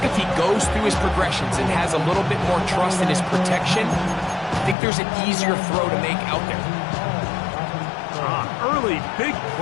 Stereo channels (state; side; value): drops out; right; at 4.8 s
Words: if he goes through his progressions and has a little bit more trust in his protection, I think there's an easier throw to make out there. Early big